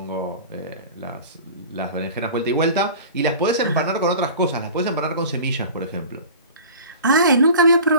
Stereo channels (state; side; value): inverted; both; correlation -0.38